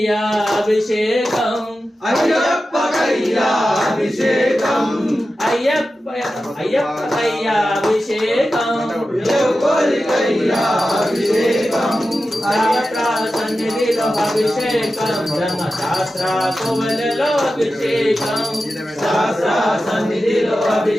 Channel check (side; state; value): both; normal; correlation 0.93